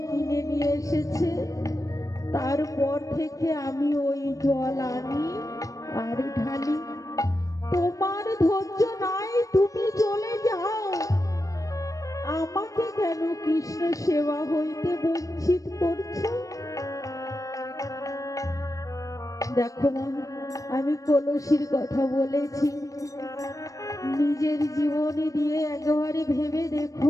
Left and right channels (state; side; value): late; right; 0.16 ms